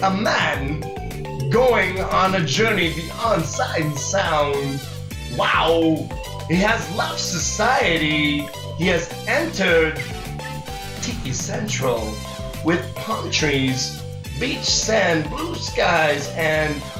a man going on a journey beyond sight and sound. Wow, he has left society. He has entered Tiki Central with palm trees, beach sand, blue skies, and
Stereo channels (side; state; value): both; identical; correlation 1.00